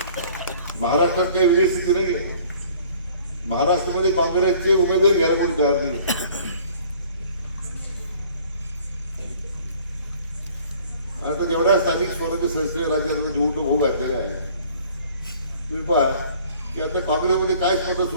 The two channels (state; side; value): inverted; both; correlation -0.53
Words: महाराष्ट्रात काही वेगळी स्थिती नाही आहे. महाराष्ट्रामध्ये काँग्रेसचे उमेदवार घ्यायला कोणी तयार नाही. आता जेवढ्या स्थानिक स्वराज्य संस्थेच्या राज्यामध्ये निवडणूक होऊ घातलेल्या आहे, तुम्ही पहा की आता काँग्रेसमध्ये काय स्पर्धा